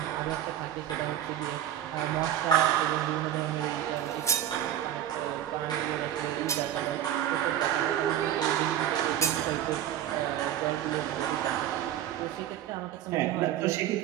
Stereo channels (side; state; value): left; quieter; 11.3 dB